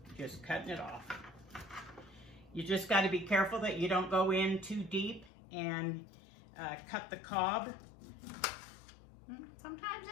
just cutting it off. You just got to be careful that you don't go in too deep and cut the cob. Sometimes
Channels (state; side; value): drops out; right; at 5.3 s